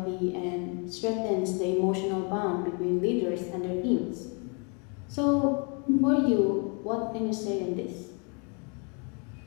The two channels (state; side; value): quieter; right; 35.7 dB